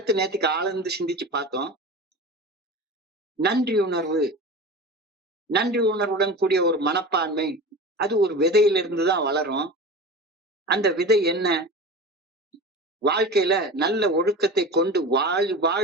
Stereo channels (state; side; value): normal; both; correlation 0.31